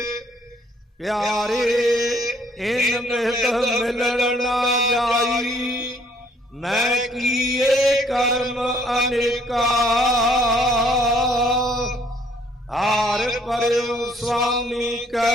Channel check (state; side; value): normal; both; correlation 0.63